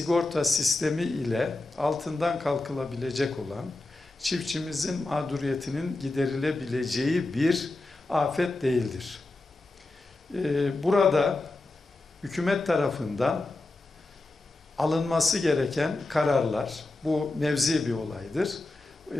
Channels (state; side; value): quieter; right; 3.0 dB